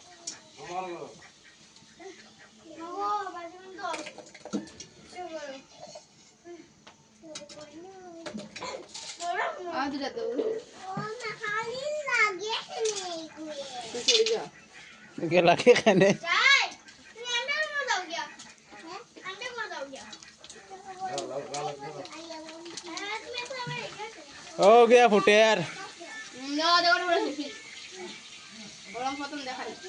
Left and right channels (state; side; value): identical; both; correlation 1.00